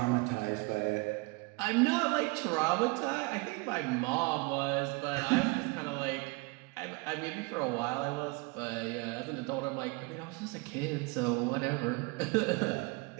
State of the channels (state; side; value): quieter; left; 27.2 dB